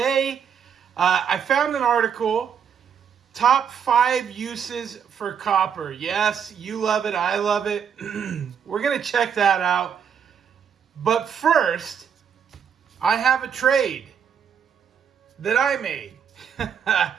I found an article, top 5 uses for copper. Yes, you love it, I love it. We're going to check that out. But first, I have a trade that I made.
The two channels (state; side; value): quieter; left; 7.6 dB